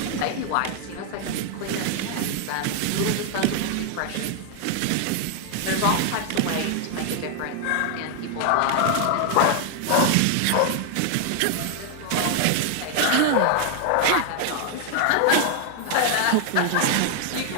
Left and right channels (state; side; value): different; both; correlation 0.00